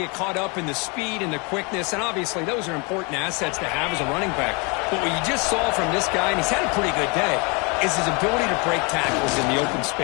caught up in the speed and the quickness, and obviously those are important assets to have as a running back. But what you just saw from this guy, and he's had a pretty good day, is his ability to break tackles in the open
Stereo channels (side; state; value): right; quieter; 30.7 dB